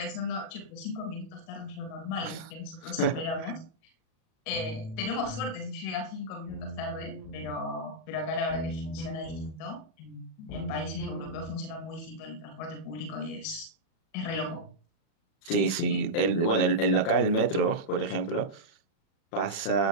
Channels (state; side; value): late; right; 37 ms